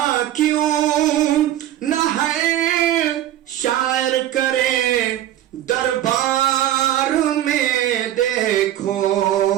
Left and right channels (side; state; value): left; quieter; 12.7 dB